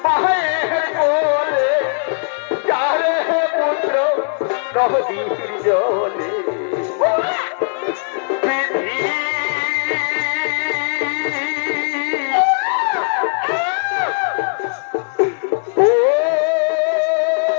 মায়ের বলে, যারে পুত্র নদীর জলে।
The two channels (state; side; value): silent; right; digital silence